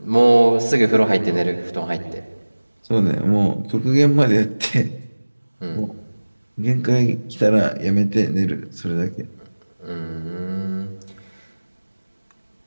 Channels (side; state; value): both; inverted; correlation -1.00